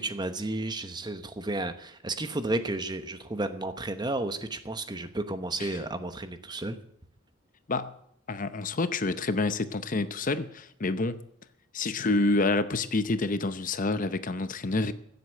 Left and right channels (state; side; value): normal; both; correlation 0.45